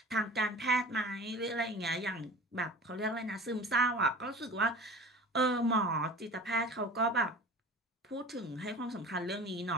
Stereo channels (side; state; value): both; normal; correlation 0.39